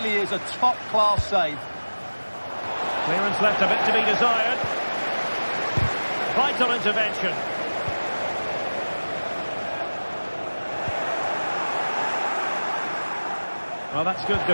is a top-class save. Clearance left a bit to be desired. Vital intervention. Well, that's good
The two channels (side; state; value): both; inverted; correlation -1.00